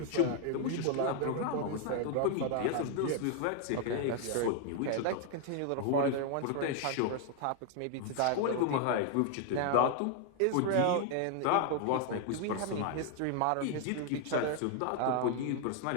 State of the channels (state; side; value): different; both; correlation 0.00